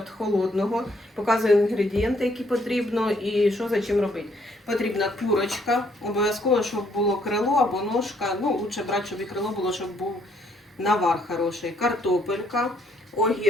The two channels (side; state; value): both; normal; correlation 0.68